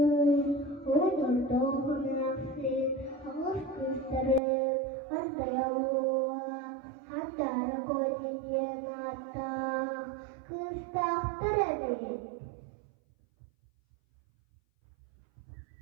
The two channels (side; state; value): left; drops out; at 4.4 s